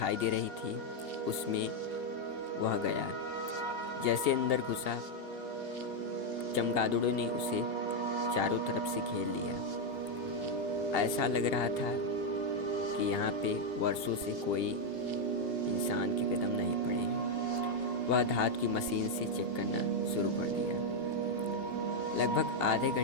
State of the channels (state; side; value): late; right; 2.8 ms